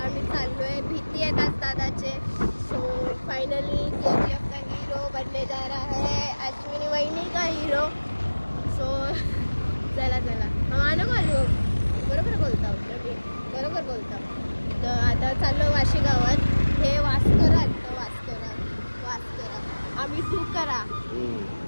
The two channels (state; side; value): inverted; both; correlation -1.00